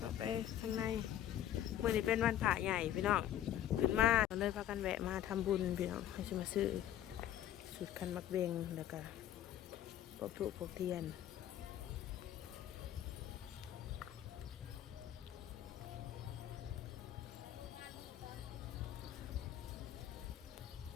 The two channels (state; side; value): quieter; right; 11.6 dB